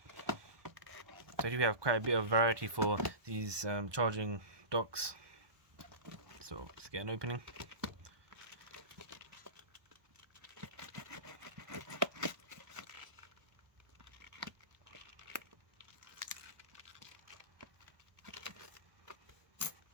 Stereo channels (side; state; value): left; late; 1.2 ms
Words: So here we have quite a bit of variety for these charging docks. So let's get an opening.